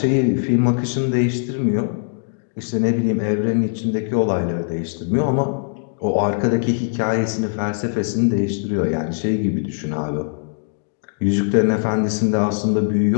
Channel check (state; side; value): silent; right; digital silence